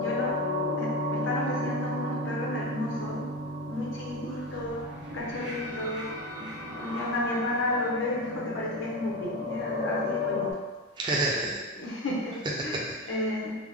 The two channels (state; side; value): normal; both; correlation 0.21